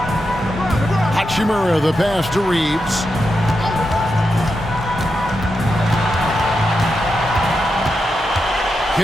Hachimura, the pass to Reeves.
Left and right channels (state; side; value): normal; both; correlation 0.87